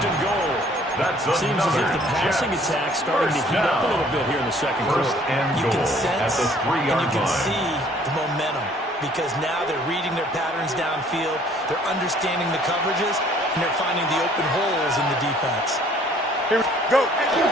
and goal. That's Seems as if the passing Jets attack starting to first heat up a down. little bit here in the second First quarter. and You goal can at sense the and 3-yard you can line. see the momentum, because now they're reading their patterns downfield, they're understanding the coverages, and they're finding the open holes in the defense. Here we go.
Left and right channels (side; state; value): both; normal; correlation 0.58